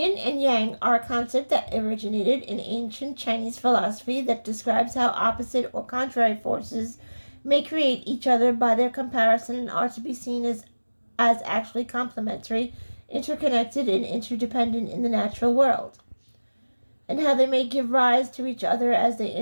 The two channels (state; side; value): inverted; both; correlation -1.00